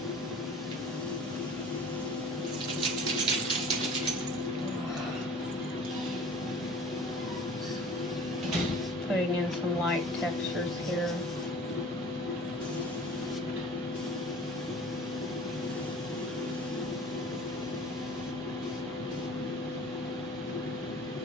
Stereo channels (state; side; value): normal; both; correlation 0.45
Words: some light textures here.